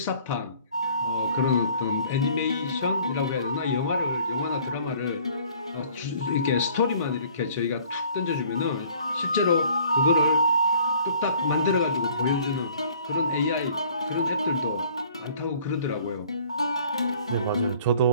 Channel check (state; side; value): inverted; both; correlation -0.55